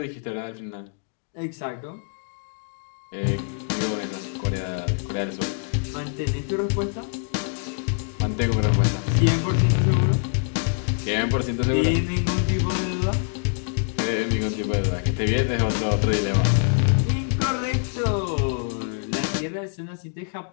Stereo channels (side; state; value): right; silent; digital silence